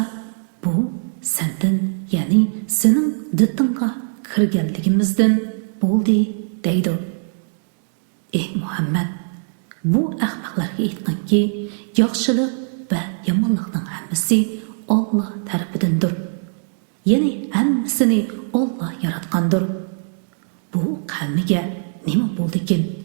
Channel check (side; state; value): left; silent; digital silence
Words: bu sendan, ya'ni sening ditinga kirganligimizdan bo'ldi deydi. Ey Muhammad, bu ahmoqlarga aytqanki, yaxshilik va yomonlikning hammasi Alloh tarafidandir. Ya'ni hammasini Alloh yaratgandir. Bu qavmiga nima bo'ldi-kin?